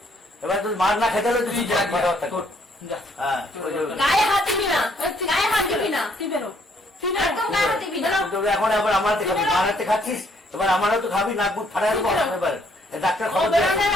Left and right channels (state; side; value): normal; both; correlation 0.67